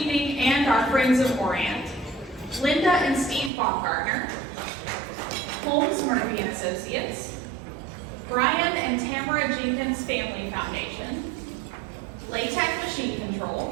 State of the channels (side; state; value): left; drops out; at 3.5 s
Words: and our Friends of Orient, Linda and Steve Baumgartner, Holmes Murphy and Associates, Brian and Tamara Jenkins Family Foundation, Latec Machine